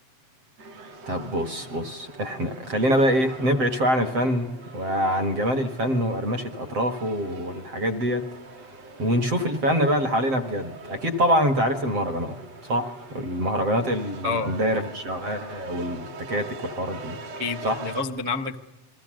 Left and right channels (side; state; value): left; late; 7.7 ms